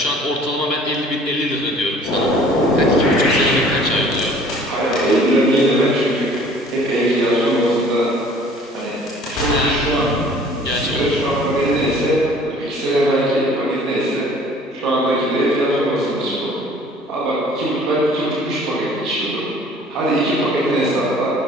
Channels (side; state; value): both; normal; correlation 0.52